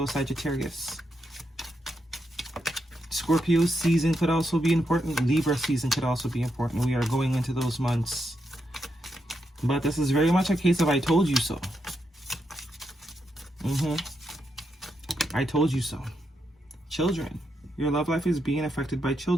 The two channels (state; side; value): normal; both; correlation 0.82